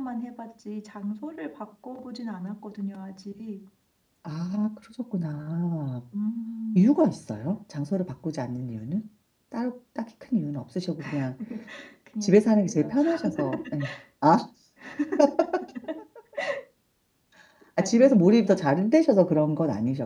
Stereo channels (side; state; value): both; identical; correlation 1.00